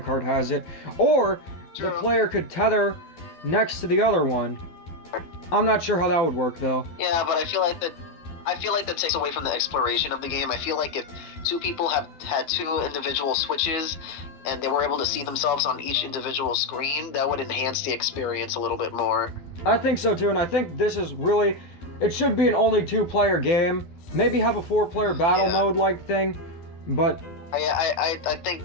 has it. Or the player could tether next to the other one. I'm not sure how that would work though. Yeah, but I feel like that takes away from the exploration of the game. I feel like if two people had two individual Switches and they were able to see themselves on each individual screen, that would enhance the experience a little bit more. I think so too, and I think this is really, it should be an only two-player game. Maybe have a four-player battle mode-like thing, but I think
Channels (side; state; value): right; late; 12 ms